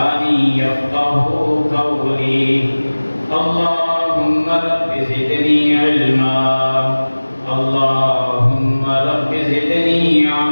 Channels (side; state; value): both; inverted; correlation -1.00